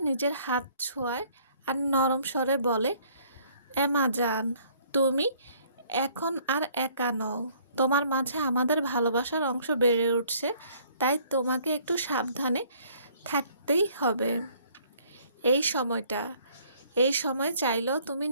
নিজের হাত ছোঁয়ায় আর নরম স্বরে বলে, এমা জান, তুমি এখন আর একা নও। তোমার মাঝে আমাদের ভালোবাসার অংশ বেড়ে উঠছে, তাই তোমাকে একটু সাবধানে থাকতেই হবে। এই সময়টা এই সময় চাইলেও তুমি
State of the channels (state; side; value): inverted; both; correlation -0.60